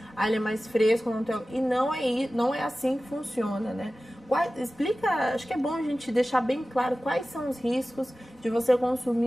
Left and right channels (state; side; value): normal; both; correlation 0.96